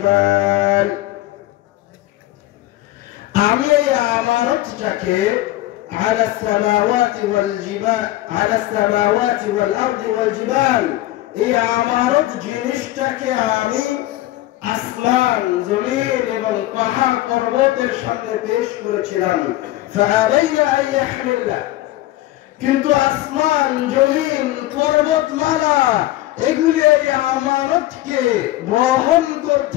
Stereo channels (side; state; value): right; quieter; 16.2 dB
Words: আমি এই আমানতটাকে على السماوات والجبال على السماوات والأرض والجبال এই আমানত জিনিসটাকে আমি আসমান জমিন এবং পাহাড় পর্বতের সামনে পেশ করেছিলাম। ফাআলাইনা আন ইয়াহমিলনা, কিন্তু আসমান জমিন পর্বতমালা এগুলি এই আমানতকে বহন